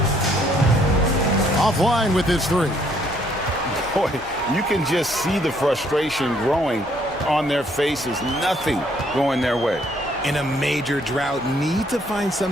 Offline with his 3. Boy, you can just see the frustration growing on their faces. Nothing going their way. In a major drought, need to find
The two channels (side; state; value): both; normal; correlation 0.66